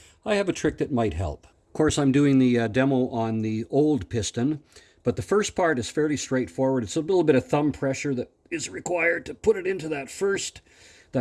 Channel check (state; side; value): identical; both; correlation 1.00